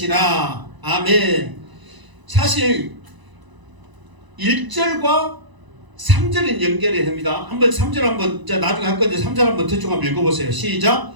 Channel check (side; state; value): left; late; 1.0 ms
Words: 아멘. 사실 1절과 3절은 연결이 됩니다. 한번 3절 한번 나중에 할 건데 3절 한번 대충 한번 읽어보세요. 시작.